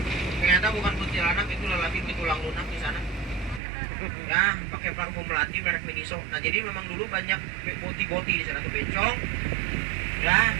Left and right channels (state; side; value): drops out; left; at 3.6 s